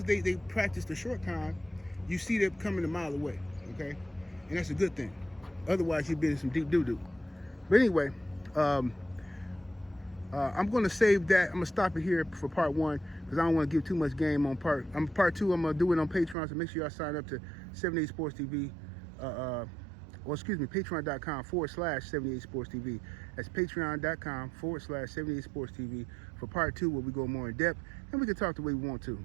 they practice the short con, you see them coming a mile away, okay? And that's a good thing. Otherwise, you'd be in some deep doo-doo. But anyway, I'm going to save that. I'm going to stop it here for part one because I don't want to give too much game on part two. I'm going to do it on Patreon, so make sure y'all sign up to 78 Sports TV. Patreon.com/78 Sports TV. That's patreon.com/78 Sports TV for part two, where we go more in depth and we can talk the way we want to.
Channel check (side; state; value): left; drops out; at 16.4 s